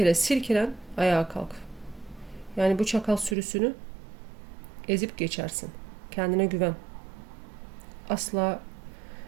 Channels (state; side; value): drops out; left; at 3.4 s